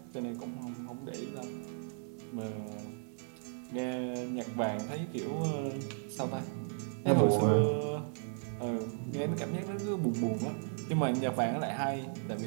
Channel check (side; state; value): left; silent; digital silence